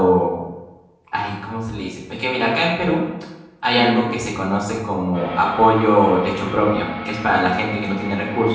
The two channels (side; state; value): both; identical; correlation 1.00